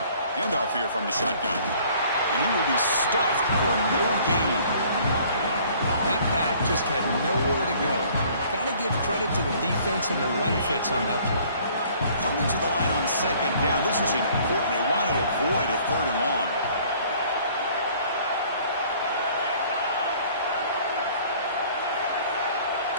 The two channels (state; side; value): inverted; both; correlation -0.56